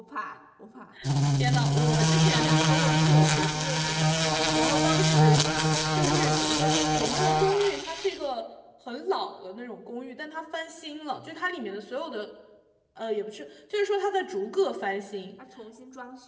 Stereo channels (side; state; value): both; identical; correlation 1.00